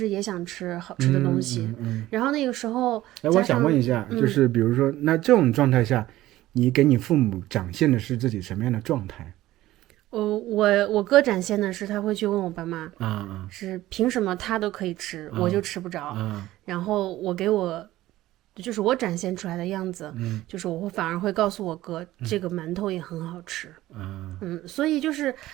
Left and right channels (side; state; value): left; quieter; 15.7 dB